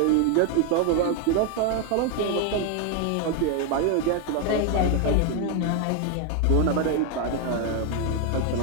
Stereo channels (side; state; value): both; different; correlation 0.01